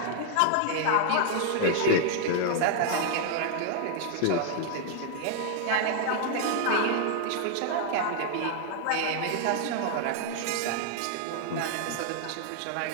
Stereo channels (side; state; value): both; different; correlation 0.00